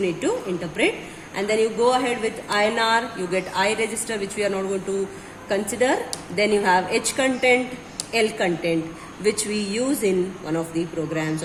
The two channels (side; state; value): both; identical; correlation 1.00